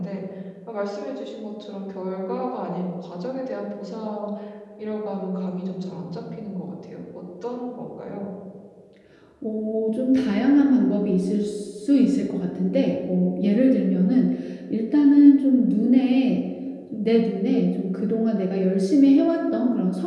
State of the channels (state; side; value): identical; both; correlation 1.00